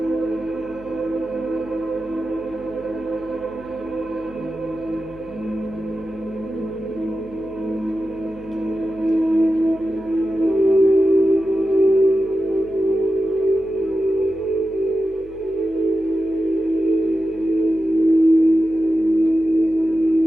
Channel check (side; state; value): left; noise; hum, 22 dB below the sound